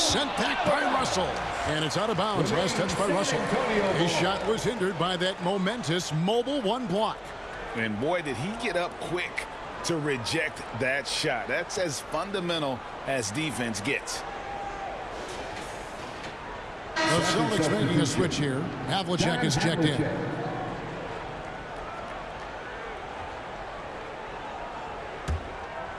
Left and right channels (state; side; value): identical; both; correlation 1.00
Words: back by Russell. And it's out of bounds. Last touch by Russell. His shot was hindered by that momentous mobile 1 block. And boy, did he get up quick to reject that shot. That's as fundamental as defense gets. The Celtics making a switch here. Havlicek is checked in.